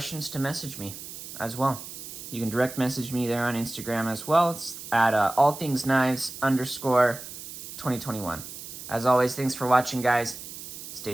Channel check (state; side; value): noise; right; hiss, 11 dB below the sound